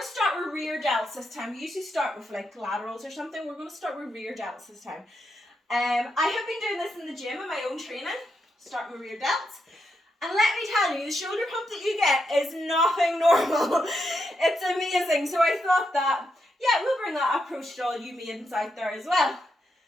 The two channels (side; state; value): both; normal; correlation 0.82